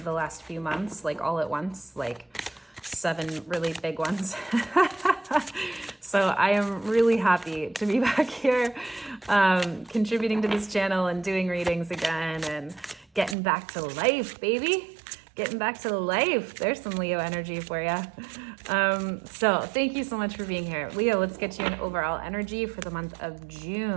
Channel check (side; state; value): left; drops out; at 13.4 s